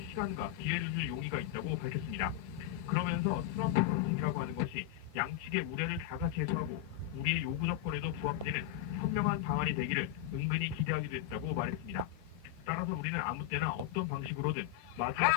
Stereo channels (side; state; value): right; quieter; 13.0 dB